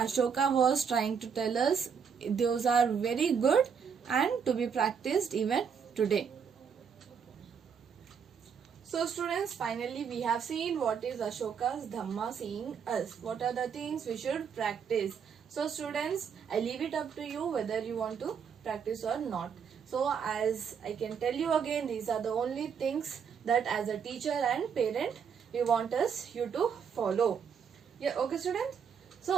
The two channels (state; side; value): quieter; left; 6.9 dB